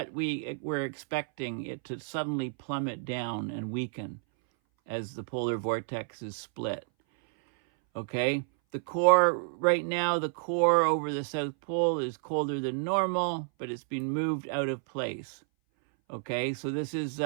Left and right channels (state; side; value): silent; left; 58 dB below the other